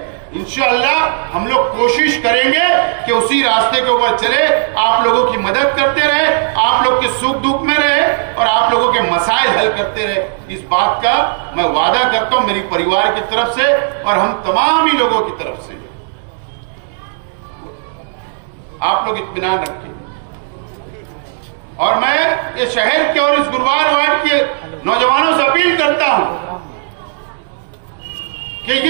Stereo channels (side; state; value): left; silent; digital silence